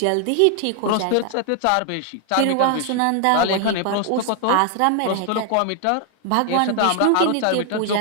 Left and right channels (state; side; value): different; both; correlation 0.00